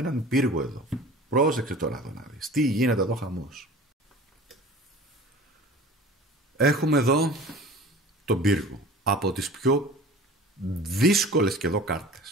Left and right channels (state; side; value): normal; both; correlation 0.41